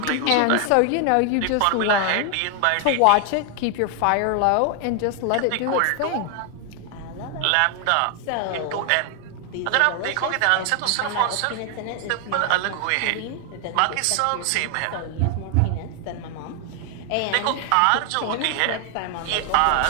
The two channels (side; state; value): both; different; correlation 0.00